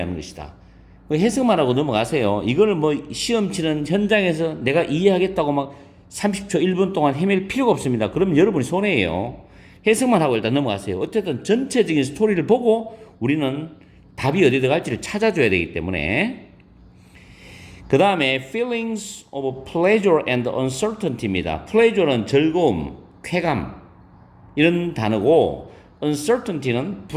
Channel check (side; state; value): both; identical; correlation 1.00